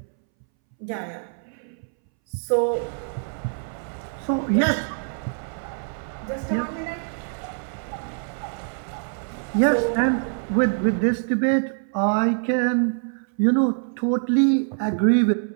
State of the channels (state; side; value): silent; left; 62 dB below the other